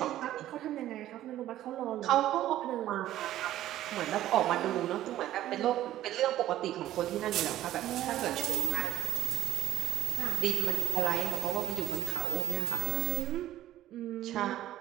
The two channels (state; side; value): quieter; left; 13.5 dB